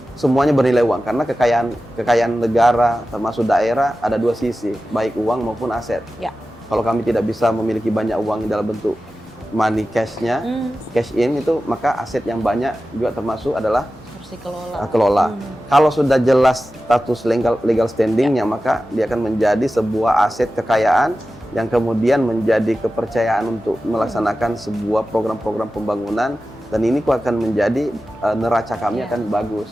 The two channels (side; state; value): both; normal; correlation 0.94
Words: semuanya bernilai uang, karena kekayaan negara termasuk daerah ada 2 sisi, baik uang maupun aset. Kalau kami tidak bisa memiliki banyak uang dalam bentuk money cash-nya, cash in itu, maka aset yang banyak juga termasuk adalah harus dikelola. Kelola. Kalau sudah jelas status legal standingnya, maka dia akan menjadi sebuah aset kekayaan yang kemudian menjadi kepercayaan untuk melaksanakan sebuah program-program pembangunan, dan ini akan menjadi neraca kami akan bagus